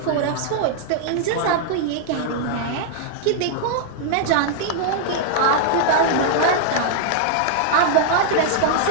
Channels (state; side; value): different; both; correlation -0.01